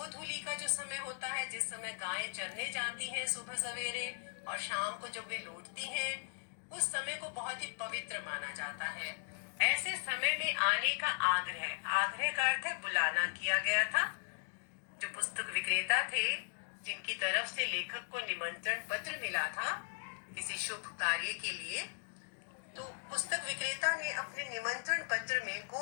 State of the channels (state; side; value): silent; right; digital silence